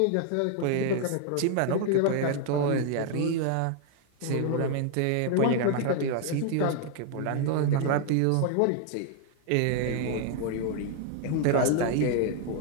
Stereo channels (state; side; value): different; both; correlation 0.00